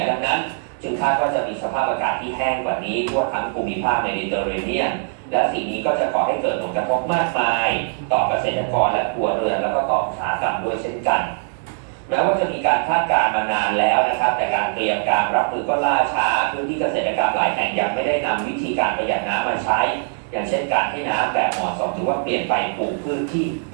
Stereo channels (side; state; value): left; silent; digital silence